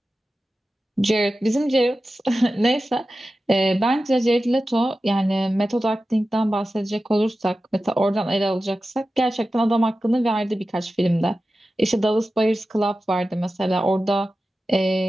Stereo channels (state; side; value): normal; both; correlation 0.94